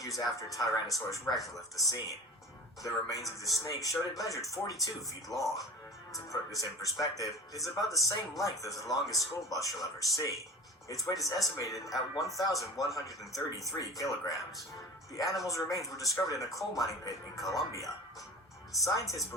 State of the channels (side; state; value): both; normal; correlation 0.37